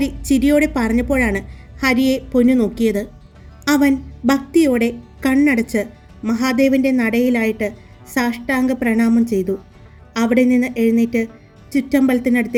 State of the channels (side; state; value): both; identical; correlation 1.00